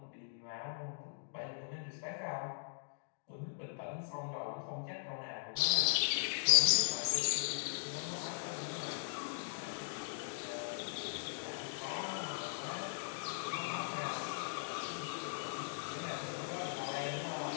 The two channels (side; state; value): right; silent; digital silence